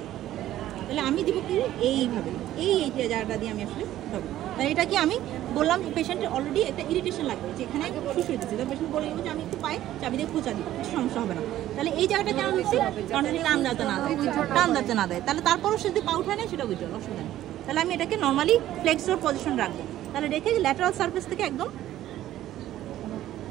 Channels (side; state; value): left; quieter; 13.4 dB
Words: তাহলে আমি দিব কি এইভাবে, এই জায়গাটা দিয়ে আমি আসলে হবে, তাহলে এটা কি আমি বললাম পেশেন্টের অলরেডি একটা ইরিটেশন লাগবে, যেখানে শুশুয়ে দিচ্ছি, তাহলে পেশেন্ট বলে যে আমি একটু পাই চাবি দিয়ে খোঁচা দিব, কিছু সমস্যা হবে না, তাহলে এই জায়গাটা কেন দিচ্ছি, কারণ যদি টান যাতে না দেয়, তাহলে তারপরও সে যদি পা উঠায় নেয় সেটা উইথড্রল, অসুবিধা নেই, তাহলে আমি এটাকে নর্মালি ফ্লেক্সর পজিশন রাখবো, তাহলে রেখে ল্যাটারাল সারফেস থেকে একদম